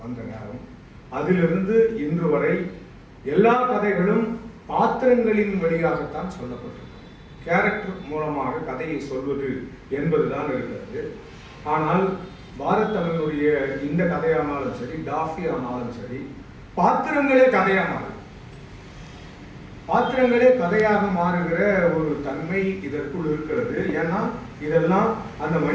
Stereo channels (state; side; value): identical; both; correlation 1.00